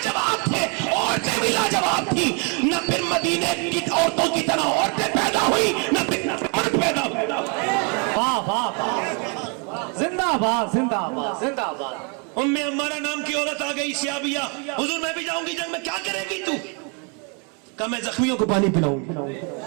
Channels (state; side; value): quieter; left; 35.9 dB